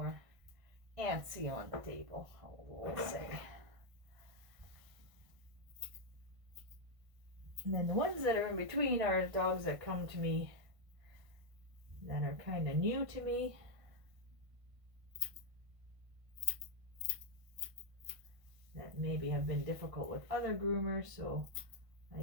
antsy on the table, we'll say. And then the ones that are in between are dogs that come to me that are kind of new to me. That maybe have been difficult with other groomers, so I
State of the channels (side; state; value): left; late; 1.5 ms